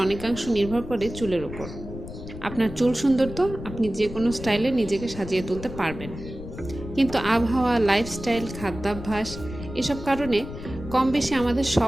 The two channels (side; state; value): left; noise; rumble, 11 dB below the sound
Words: অনেকাংশ নির্ভর করে চুলের ওপর। আপনার চুল সুন্দর তো আপনি যে কোনো স্টাইলে নিজেকে সাজিয়ে তুলতে পারবেন, কিন্তু আবহাওয়া, লাইফস্টাইল, খাদ্যাভ্যাস এসব কারণে কম বেশি আমাদের